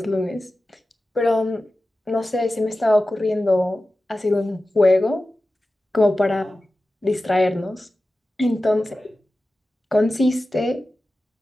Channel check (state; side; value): normal; both; correlation 0.95